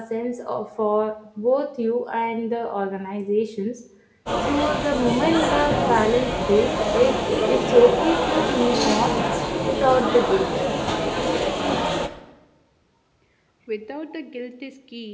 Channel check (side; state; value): both; identical; correlation 1.00